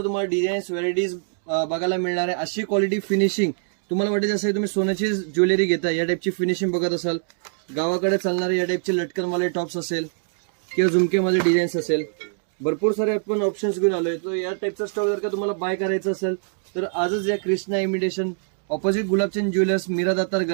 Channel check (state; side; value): silent; left; digital silence